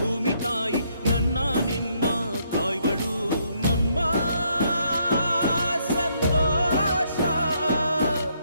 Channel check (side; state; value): both; inverted; correlation -0.72